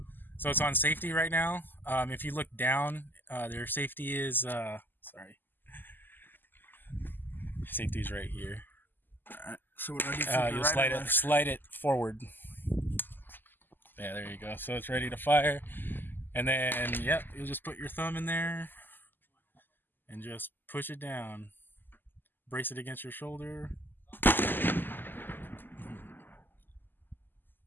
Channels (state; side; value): late; right; 0.091 ms